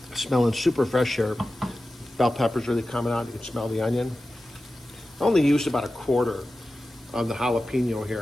Smelling super fresh here. Bell pepper's really coming out. You can smell the onion. I only used about 1/4 of the jalapeno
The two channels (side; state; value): both; normal; correlation 0.94